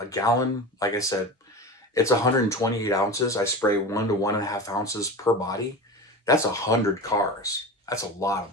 gallon, like I said, it's 128 ounces. I spray 1 to 1.5 ounces per body. That's 100 cars. That's a lot of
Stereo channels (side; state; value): both; normal; correlation 0.29